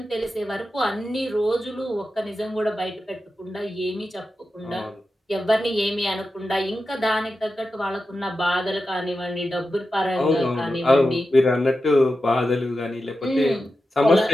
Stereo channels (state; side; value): normal; both; correlation 0.91